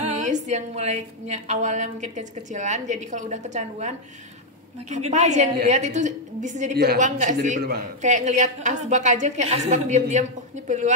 yang mulainya awalnya mungkin kecil-kecilan, jadi kalau udah kecanduan makin apa gede aja yang ya. dilihat itu bisa jadi peluang nggak sih? Kayak ngelihat asbak aja, kayak asbak diam-diam, oh ini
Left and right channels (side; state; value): both; normal; correlation 0.00